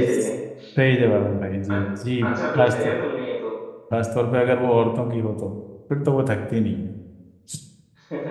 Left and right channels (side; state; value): both; identical; correlation 1.00